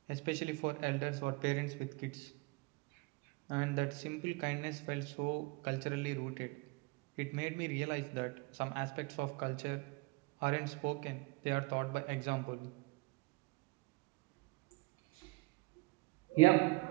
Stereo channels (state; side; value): quieter; left; 25.5 dB